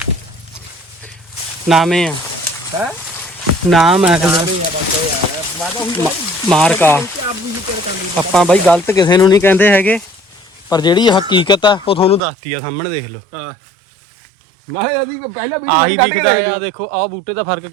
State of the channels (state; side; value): drops out; left; at 12.2 s